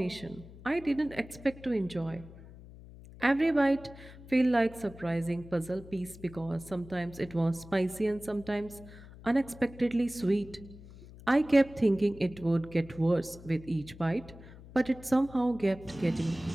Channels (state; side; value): noise; left; hum, 18 dB below the sound